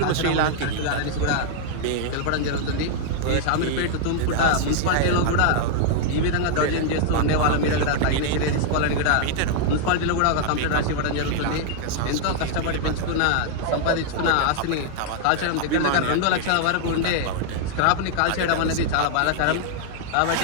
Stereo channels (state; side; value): different; both; correlation 0.00